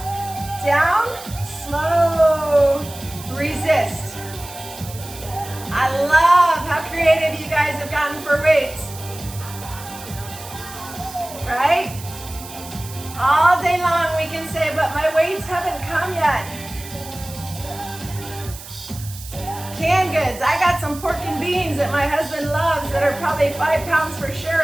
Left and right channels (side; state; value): right; noise; hiss, 15 dB below the sound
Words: down, slow, resist. I love how creative you guys have gotten for weights. Right? All day long we can say, but my weights haven't come yet. Canned goods. I got some pork and beans that my husband loves that are probably 5 pounds for